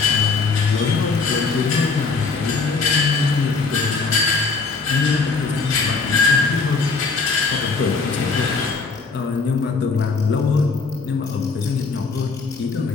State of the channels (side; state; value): right; quieter; 4.5 dB